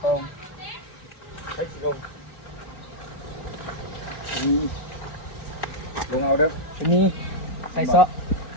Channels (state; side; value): late; right; 4.3 ms